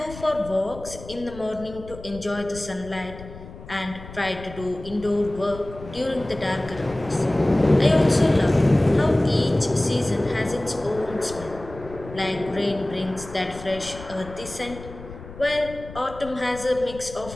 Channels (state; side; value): noise; left; rumble, 15 dB below the sound